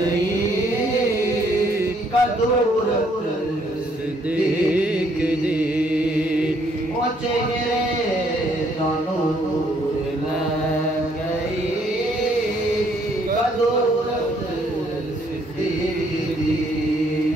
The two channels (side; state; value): both; normal; correlation 0.67